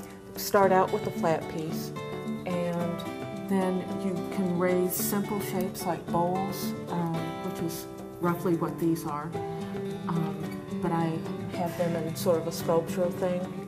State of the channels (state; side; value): identical; both; correlation 1.00